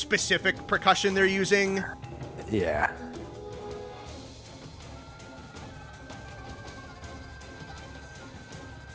percussion they're using. Yeah.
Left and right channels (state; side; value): identical; both; correlation 1.00